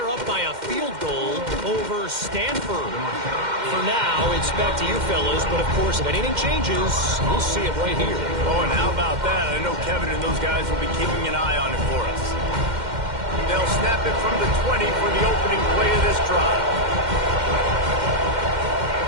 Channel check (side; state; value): left; late; 2.1 ms